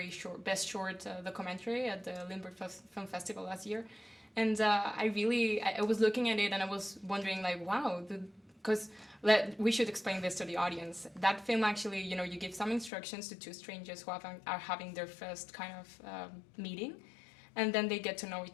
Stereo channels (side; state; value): right; drops out; at 12.9 s